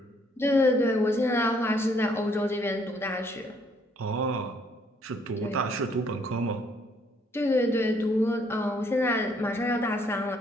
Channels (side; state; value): both; normal; correlation 0.66